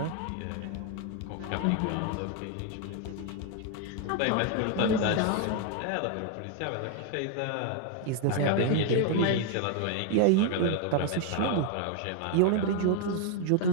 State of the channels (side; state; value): both; different; correlation 0.01